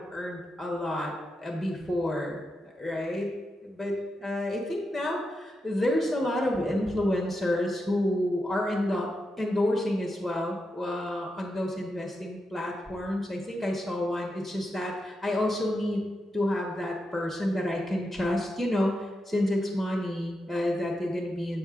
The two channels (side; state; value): both; normal; correlation 0.87